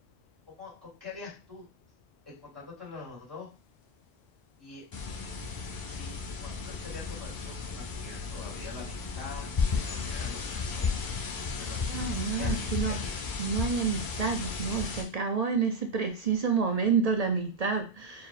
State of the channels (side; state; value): both; normal; correlation 0.11